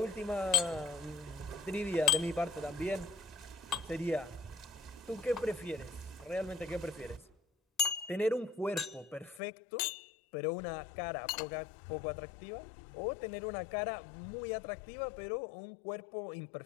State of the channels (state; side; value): drops out; right; at 9.4 s